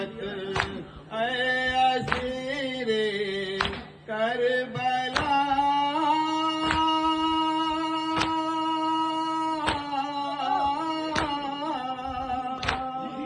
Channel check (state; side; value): identical; both; correlation 1.00